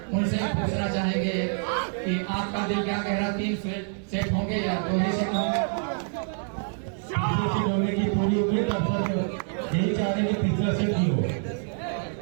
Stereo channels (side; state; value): left; silent; 60 dB below the other